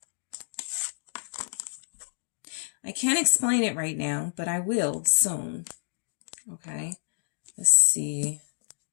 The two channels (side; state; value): right; silent; digital silence